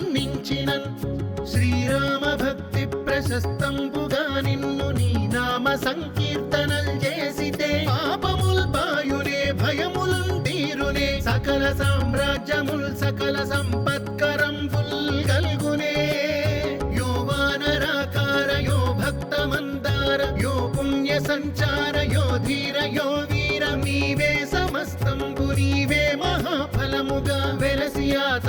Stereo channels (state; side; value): identical; both; correlation 1.00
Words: శ్రీరామ భక్తి ప్రశస్తంబుగా నిన్ను నీ నామ సంకీర్తనల్ చేసితే పాపముల్ బాయునే భయములున్ తీరునే సకల సామ్రాజ్యముల్ సకల సంపత్కరంబుల్ గల్గునే యో వానరాకార యో భక్త మందార యో పుణ్య సంచార యో ధీర యో వీర నీవే సమస్తంబు నీవే మహాఫలముగా వెలసి ఆ